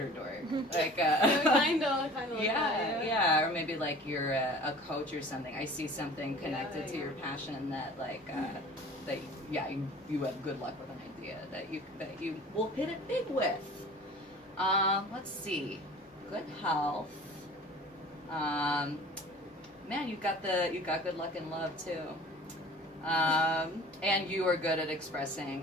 dork. Like, kind of like yeah, that. yeah, or maybe like you're a coach or something. I see something connected to your passion that like that you have good luck with an idea that you will hit it big with. Let's see, good health. Man, you got good luck in love too. And you are good at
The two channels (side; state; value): both; normal; correlation 0.44